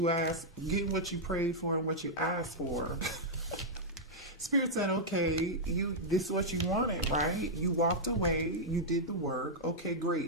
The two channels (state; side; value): normal; both; correlation -0.06